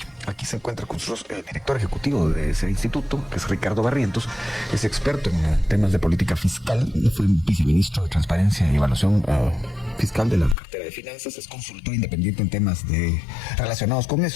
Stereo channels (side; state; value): right; drops out; at 10.6 s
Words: Aquí se encuentra con nosotros el director ejecutivo de ese instituto, que es Ricardo Barrientos. Es experto en temas de política fiscal, fue viceministro de Transparencia y Evaluación Fiscal de la Cartera de Finanzas, es consultor independiente en temas relacionados con